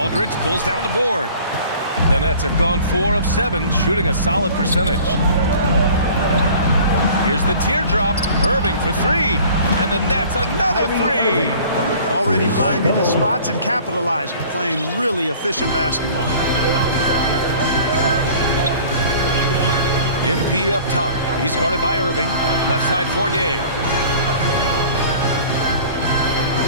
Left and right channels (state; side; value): inverted; both; correlation -0.47